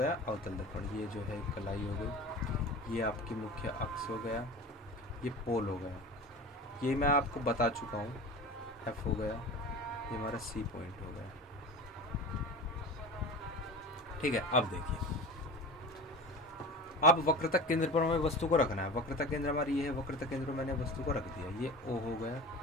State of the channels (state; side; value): normal; both; correlation 0.34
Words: अवतल दर्पण। ये जो है कलाई हो गई, ये आपकी मुख्य अक्ष हो गया, ये पोल हो गया। ये मैं आपको बता चुका हूँ, F हो गया, ये हमारा C पॉइंट हो गया। ठीक है, अब देखिए अब वक्रता केंद्र पर हमें वस्तु को रखना है। वक्रता केंद्र हमारी ये है, वक्रता केंद्र पर मैंने वस्तु को रख दिया। ये O हो गया,